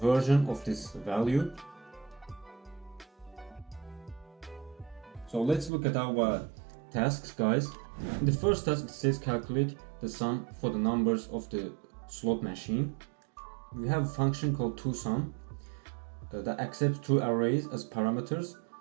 of this value. So let's look at our tasks guys. In the first task it says calculate the sum for the numbers of the slot machine. We have a function called toSum that accepts two arrays as parameters,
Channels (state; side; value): drops out; left; at 5.7 s